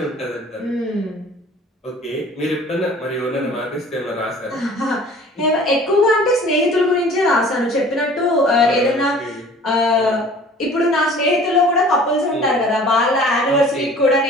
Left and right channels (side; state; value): both; normal; correlation 0.48